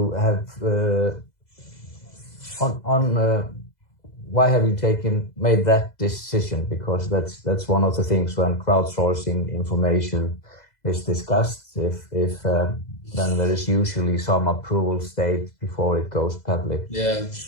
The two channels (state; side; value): late; right; 2.0 ms